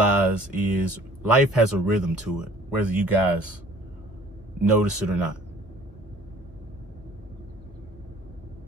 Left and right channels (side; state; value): both; normal; correlation 0.52